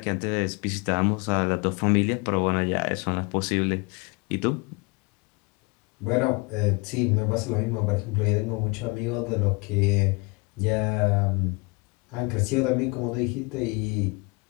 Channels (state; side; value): quieter; right; 29.5 dB